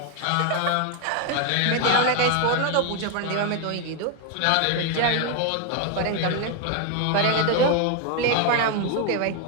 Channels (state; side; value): different; both; correlation 0.01